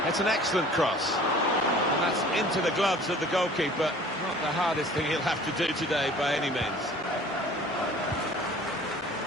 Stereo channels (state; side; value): normal; both; correlation 0.48